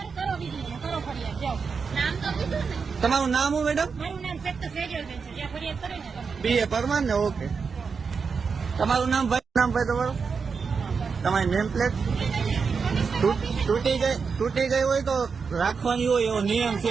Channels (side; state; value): left; quieter; 5.4 dB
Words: તમારું નામ હું મેડમ? BA પરમાર ને? ઓકે. તમારું નામ ભાઈ? નામ ભાઈ તમારું? તમારી નેમ પ્લેટ તૂટી ગઈ હોય તો રાખવાની હોય, એવો નિયમ